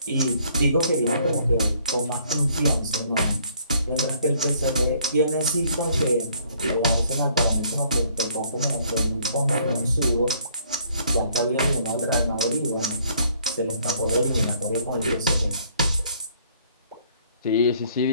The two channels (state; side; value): inverted; both; correlation -0.63